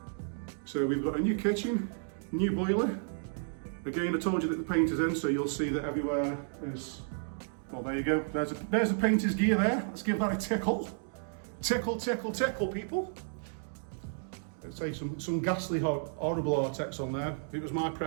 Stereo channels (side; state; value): left; silent; digital silence